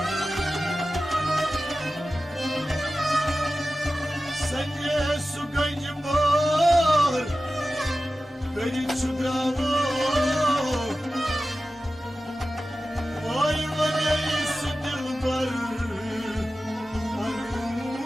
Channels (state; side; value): normal; both; correlation 0.94